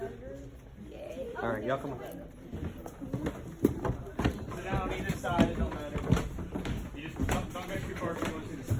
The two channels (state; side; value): identical; both; correlation 1.00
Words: All right, y'all come on. Sit down on either side. It don't matter. You just don't go too far if you want to see the